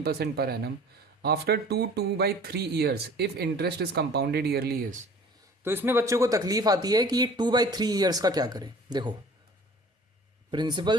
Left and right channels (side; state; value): both; normal; correlation 0.48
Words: per annum after 2/3 years if interest is compounded yearly is. तो इसमें बच्चों को तकलीफ आती है कि ये 2/3 ईयर्स का क्या करें। देखो